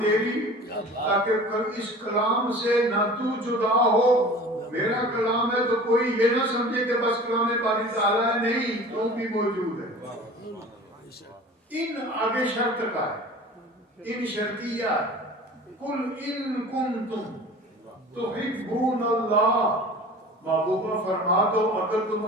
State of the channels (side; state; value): both; normal; correlation 0.41